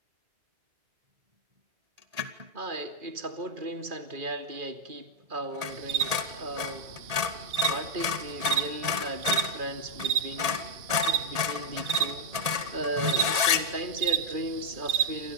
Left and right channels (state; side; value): late; left; 1.8 ms